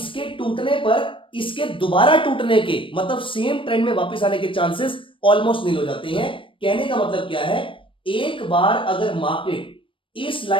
टूटने पर इसके दोबारा टूटने के, मतलब सेम ट्रेंड में वापस आने के चांसेस ऑलमोस्ट नील हो जाते हैं। कहने का मतलब क्या है, एक बार अगर मार्केट इस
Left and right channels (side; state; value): right; late; 0.25 ms